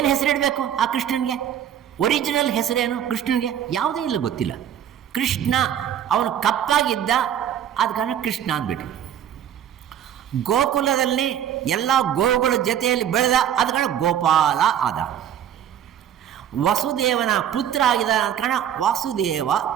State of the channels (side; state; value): left; quieter; 9.9 dB